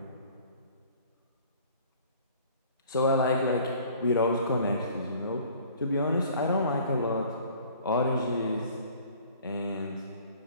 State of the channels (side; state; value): both; inverted; correlation -0.52